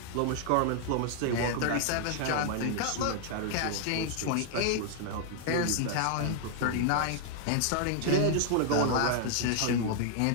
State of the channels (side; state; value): both; different; correlation 0.00